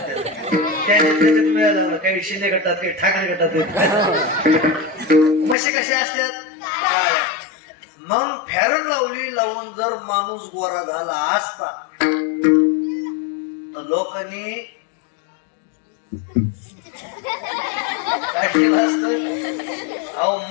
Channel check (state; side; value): drops out; right; at 5.6 s